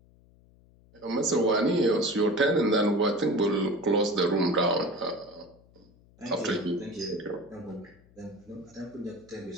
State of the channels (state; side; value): noise; left; hum, 28 dB below the sound